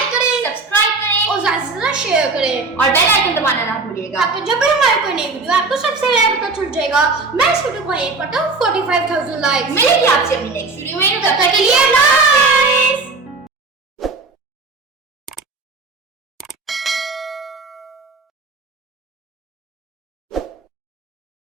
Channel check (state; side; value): quieter; left; 3.9 dB